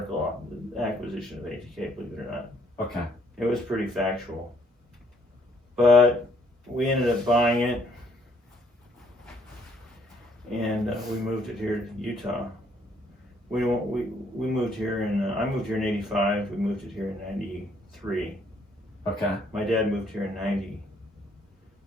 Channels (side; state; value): both; normal; correlation 0.66